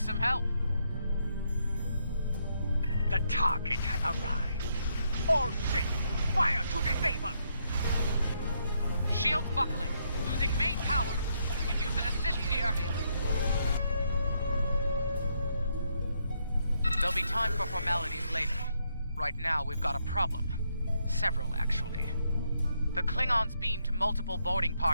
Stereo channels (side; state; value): both; inverted; correlation -0.76